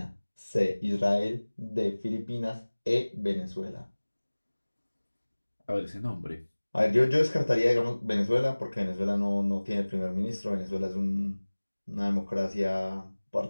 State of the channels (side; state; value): both; inverted; correlation -1.00